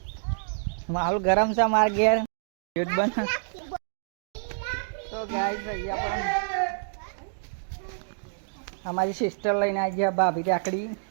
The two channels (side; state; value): left; silent; digital silence